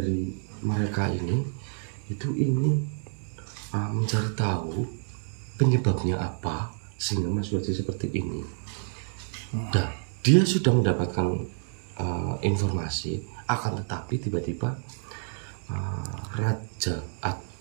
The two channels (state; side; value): silent; left; 59 dB below the other